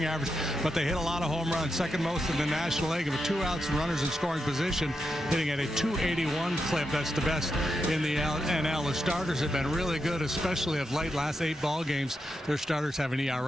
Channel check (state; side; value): normal; both; correlation 0.86